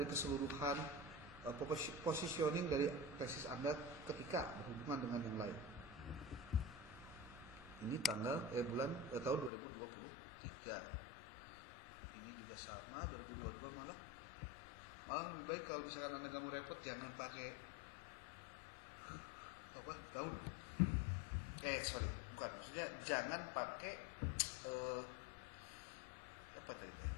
keseluruhan positioning dari tesis Anda ketika berhubungan dengan yang lain. Ini bulan tahun 2023. Ini juga sama 2022 malah lebih baik kalau misalkan Anda nggak mau repot jangan pakai apa tahun. Bukan, maksudnya jangan pakai apa tadi teh?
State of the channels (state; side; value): drops out; right; at 9.5 s